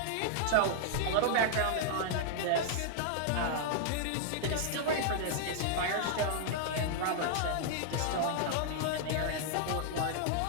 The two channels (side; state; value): both; different; correlation -0.01